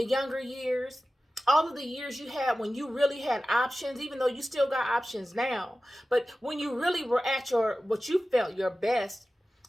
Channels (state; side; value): normal; both; correlation 0.95